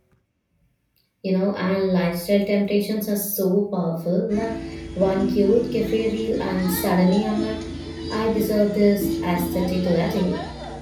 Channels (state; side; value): identical; both; correlation 1.00